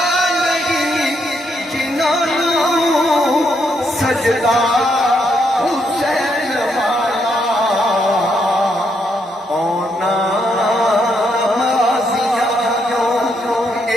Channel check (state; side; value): normal; both; correlation 0.76